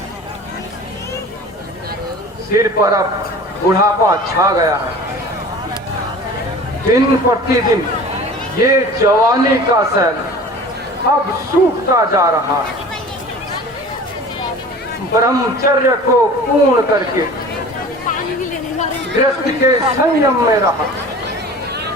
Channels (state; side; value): normal; both; correlation 0.41